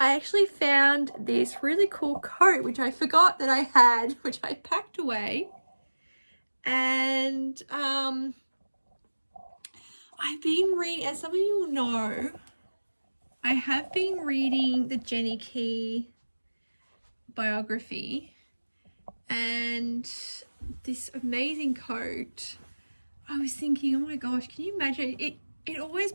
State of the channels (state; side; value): inverted; both; correlation -1.00